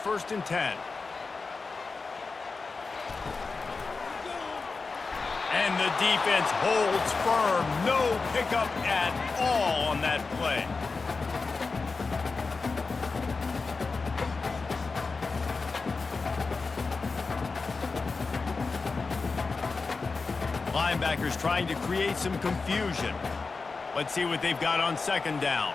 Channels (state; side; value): quieter; right; 4.2 dB